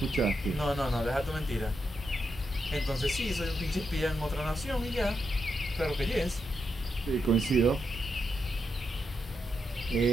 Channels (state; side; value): normal; both; correlation 0.83